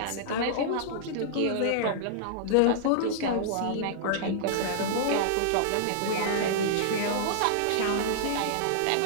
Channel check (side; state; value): both; different; correlation -0.02